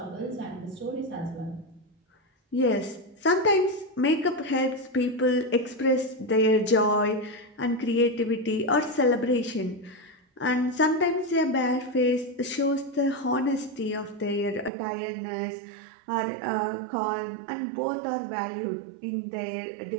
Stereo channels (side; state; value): left; drops out; at 14.7 s